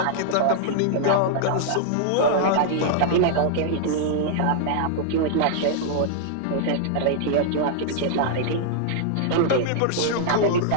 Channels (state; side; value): different; both; correlation -0.01